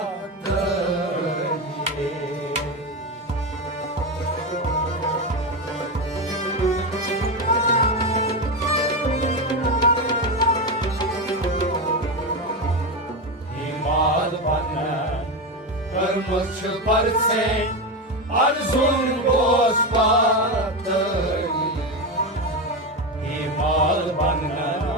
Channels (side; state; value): both; normal; correlation 0.14